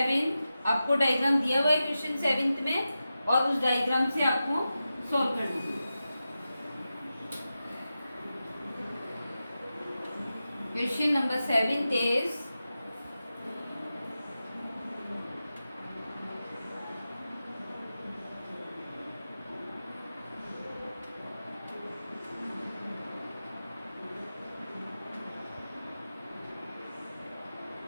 आपको डायग्राम दिया हुआ है क्वेश्चन 7 में, और उस डायग्राम से आपको सॉल्व करना है। Question number 7 is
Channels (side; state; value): both; inverted; correlation -0.92